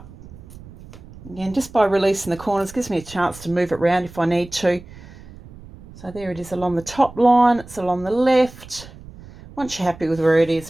Again, just by releasing the corners, gives me a chance to move it around if I need to. So there it is along the top line, it's along the left. Once you're happy with where it is,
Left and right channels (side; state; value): right; noise; rumble, 18 dB below the sound